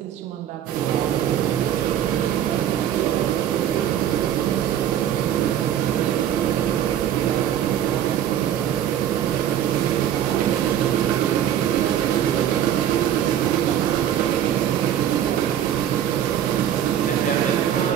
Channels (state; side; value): quieter; left; 10.5 dB